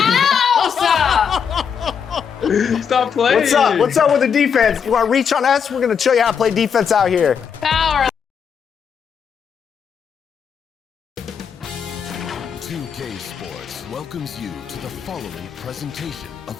else. Stop playing. What's up? What's up with the defense? You want to reach on us? We're going to show you how to play defense out here. Power. 2K Sports welcomes you to the following presentation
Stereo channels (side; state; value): right; quieter; 7.1 dB